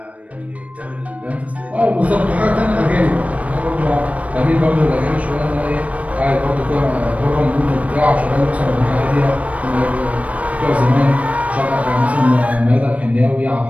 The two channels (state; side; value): late; left; 0.066 ms